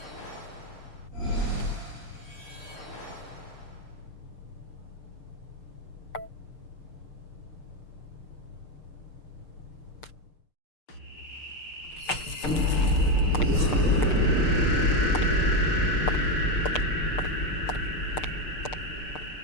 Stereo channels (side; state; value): right; late; 6.7 ms